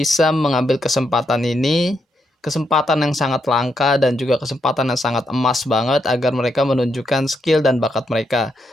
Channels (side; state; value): both; normal; correlation 0.80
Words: mengambil kesempatan ini, kesempatan yang sangat langka dan juga kesempatan yang sangat emas banget agar mereka menunjukkan skill dan bakat mereka